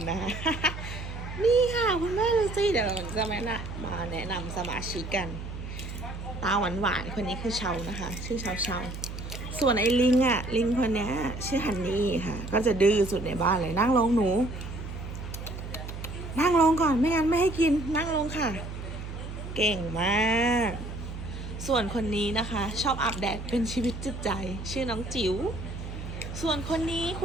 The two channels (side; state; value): right; noise; hum, 8 dB below the sound